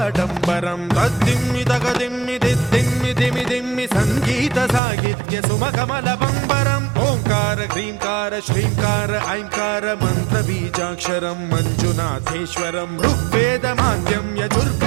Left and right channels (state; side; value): drops out; left; at 4.8 s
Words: तद्दिम्मि तगदिम्मि दिद्दिम्मि दिमि दिम्मि सङ्गीत साहित्य सुमकमलबम्बरम् ओङ्कार ह्रीङ्कार श्रीङ्कार ऐङ्कार मन्त्रबीजाक्षरं मञ्जुनाथेश्वरं ऋग्वेदमाद्यं